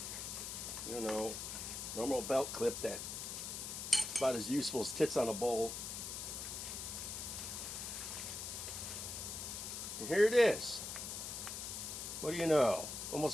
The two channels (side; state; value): left; noise; hiss, 5 dB below the sound